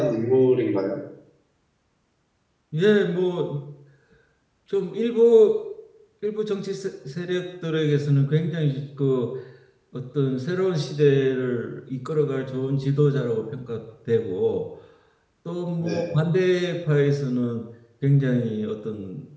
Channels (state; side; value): identical; both; correlation 1.00